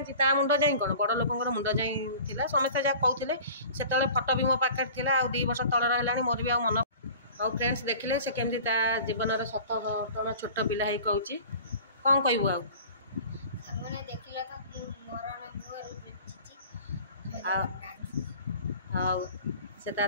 ता मुंड जाए कौन बड़ लोक मुंड जाए समस्ते जहाँ कहते से फटो भी मो पाखे था 2 वर्ष तलर है मोर भी मन और फ्रेंड्स देखिले से केमती जीवन सत घटना छोट पिला ही कहूँ कौन कहबू आउ से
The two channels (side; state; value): both; inverted; correlation -0.43